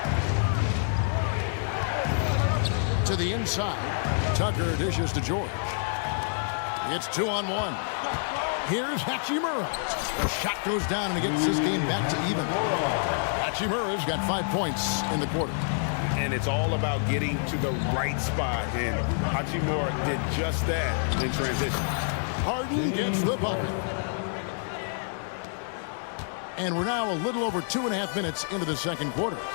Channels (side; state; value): right; silent; digital silence